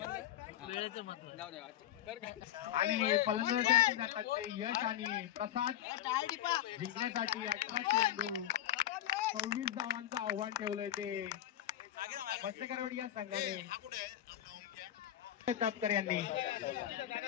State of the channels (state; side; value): quieter; right; 12.0 dB